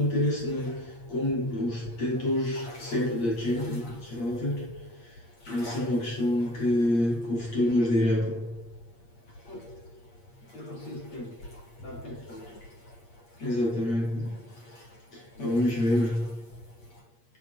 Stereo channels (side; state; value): right; late; 8.6 ms